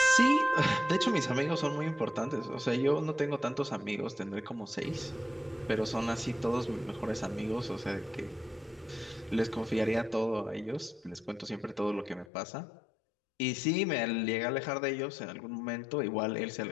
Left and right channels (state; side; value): drops out; right; at 12.2 s